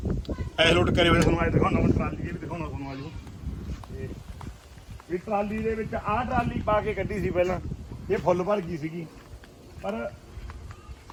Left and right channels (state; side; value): identical; both; correlation 1.00